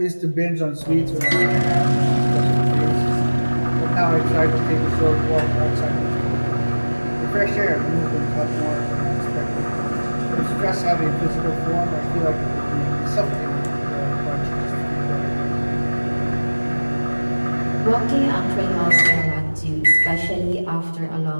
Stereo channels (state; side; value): inverted; both; correlation -1.00